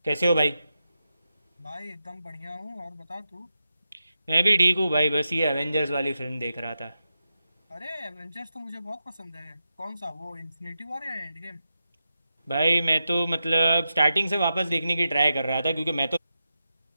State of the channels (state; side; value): inverted; both; correlation -0.89